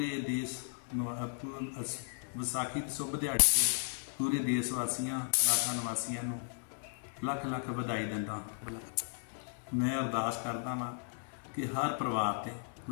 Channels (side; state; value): right; silent; digital silence